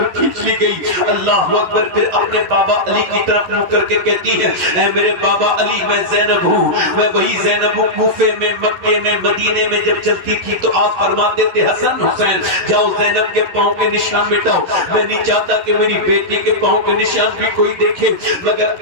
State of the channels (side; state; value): left; late; 11 ms